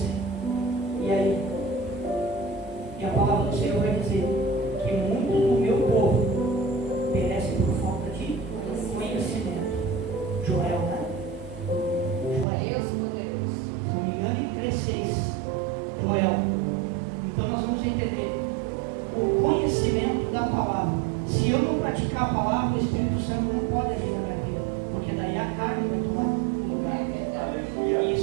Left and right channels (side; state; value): left; drops out; at 12.5 s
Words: E aí? E a palavra do Senhor vai dizer que muitos do meu povo Se eu não praticar a palavra, o Espírito Santo não pode agir na minha vida, porque daí a carne vai tomar o lugar. E